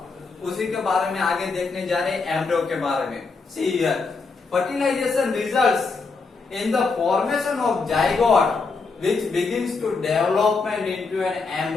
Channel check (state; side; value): quieter; right; 4.3 dB